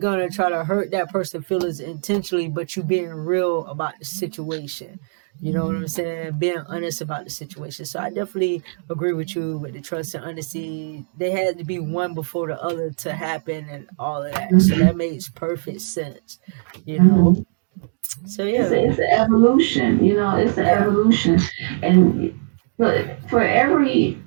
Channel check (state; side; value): silent; left; digital silence